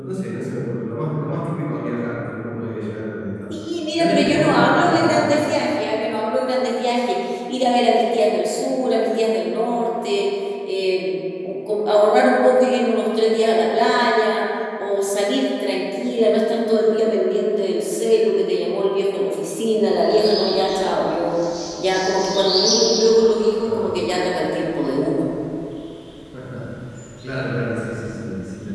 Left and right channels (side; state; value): both; identical; correlation 1.00